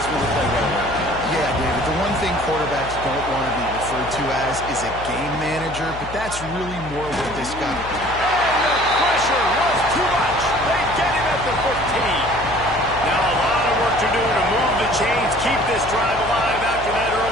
really play well. Yeah, David, the one thing quarterbacks don't want to be referred to as is a game manager, but that's really more what this guy... And the pressure was too much. They get him at the 15. Now a lot of work to do to move the chains, keep this drive alive after that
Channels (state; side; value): noise; left; hum, 13 dB below the sound